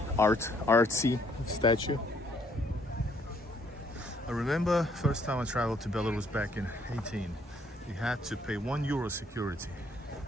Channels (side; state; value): both; normal; correlation 0.67